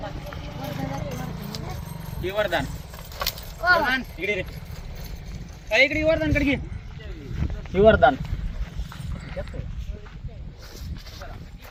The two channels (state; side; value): identical; both; correlation 1.00